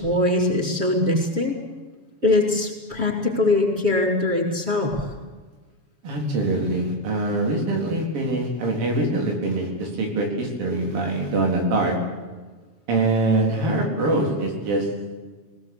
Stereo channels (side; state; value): left; late; 7.2 ms